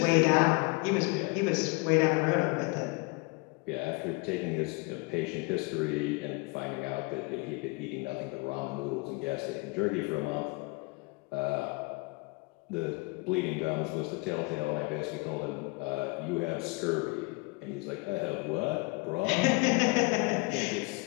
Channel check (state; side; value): quieter; right; 28.1 dB